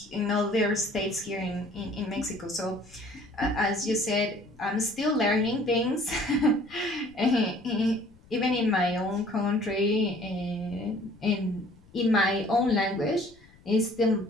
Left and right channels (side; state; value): left; noise; rumble, 26 dB below the sound